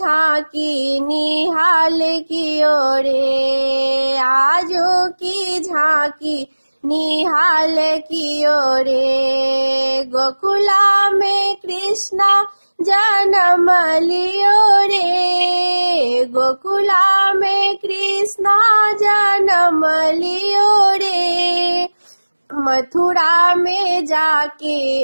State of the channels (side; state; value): both; inverted; correlation -1.00